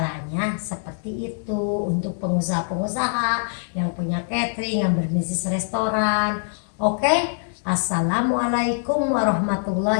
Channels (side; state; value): right; silent; digital silence